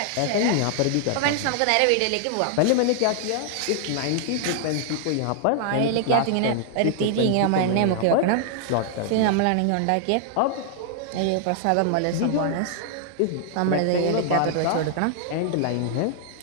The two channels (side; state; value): both; different; correlation 0.00